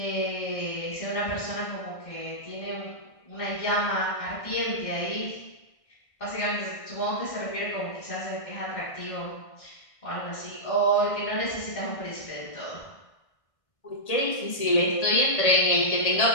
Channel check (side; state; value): right; late; 1.5 ms